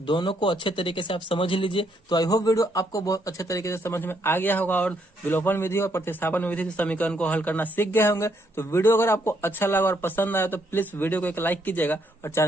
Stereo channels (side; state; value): both; normal; correlation 0.73